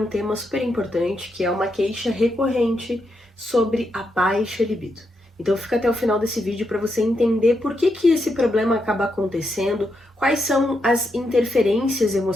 tema super importante, que é uma queixa recorrente sobre a baixa libido. Então fica até o final desse vídeo para você entender por que esse problema acaba acontecendo, quais são as interferências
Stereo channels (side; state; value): both; normal; correlation 0.82